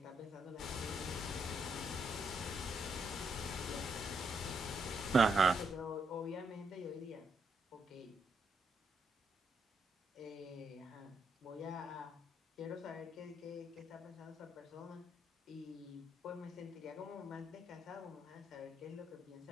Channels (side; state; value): both; normal; correlation 0.77